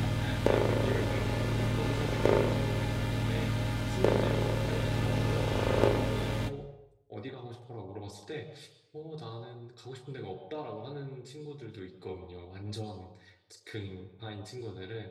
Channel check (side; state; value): both; identical; correlation 1.00